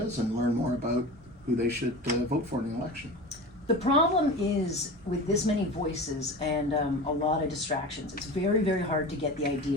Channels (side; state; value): both; normal; correlation 0.32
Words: and learn more about who they should vote for in the election. The problem is with this many voices and a lot of distractions, it's very, very hard to get the